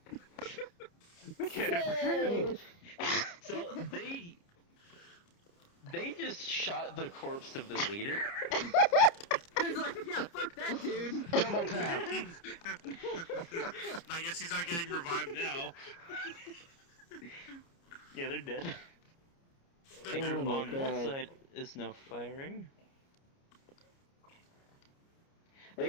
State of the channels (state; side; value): late; right; 29 ms